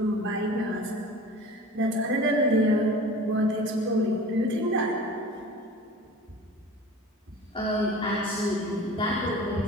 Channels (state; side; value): normal; both; correlation 0.39